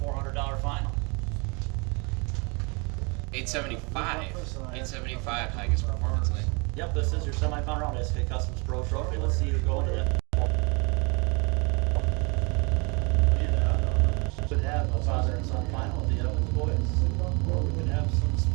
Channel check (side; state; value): left; quieter; 30.6 dB